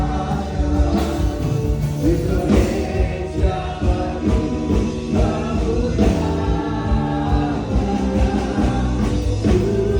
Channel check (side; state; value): both; identical; correlation 1.00